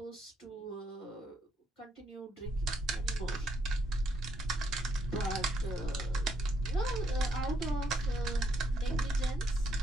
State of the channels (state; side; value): normal; both; correlation 0.74